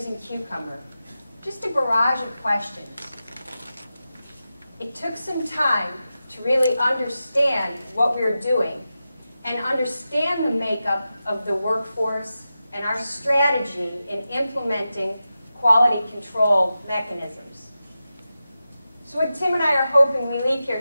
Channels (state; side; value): inverted; both; correlation -0.92